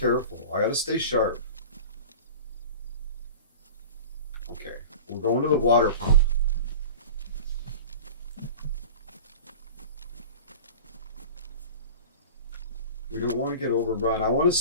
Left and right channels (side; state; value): both; inverted; correlation -0.36